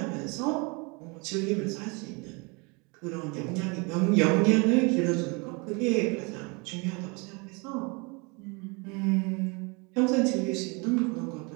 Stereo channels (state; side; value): quieter; left; 29.8 dB